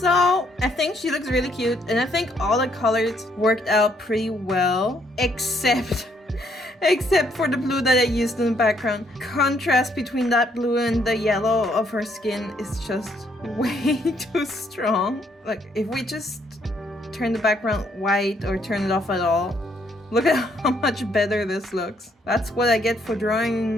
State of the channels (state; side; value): normal; both; correlation 0.70